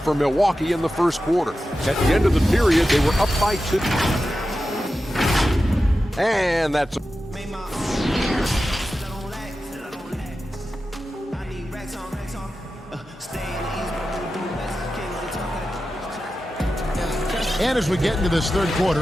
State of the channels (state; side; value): normal; both; correlation 0.92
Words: Milwaukee in the first quarter. At the end of the period, they were up by 2. And that's... And as we get into this third